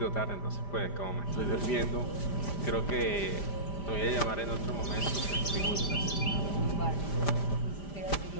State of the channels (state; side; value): late; right; 5.0 ms